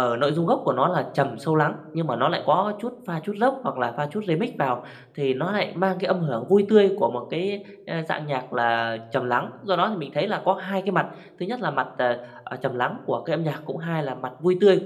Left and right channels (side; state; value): both; identical; correlation 1.00